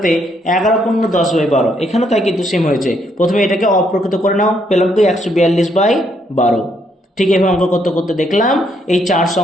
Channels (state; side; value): normal; both; correlation 0.73